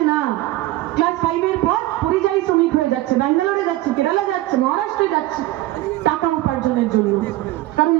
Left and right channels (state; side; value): quieter; left; 16.8 dB